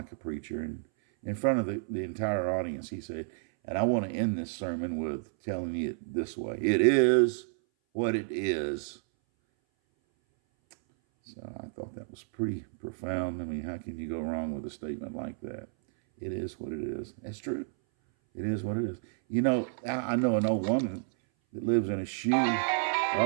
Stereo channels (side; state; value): left; silent; 57 dB below the other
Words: a preacher. And in front of the entire audience, he said, and I want to end this sermon with telling you it this way. It is what it is. So I thought that was pretty profound. I mean, how can you go wrong with a statement like that? It is what it is. That's true. It is what it is. I know an old woman that lives in a shoe.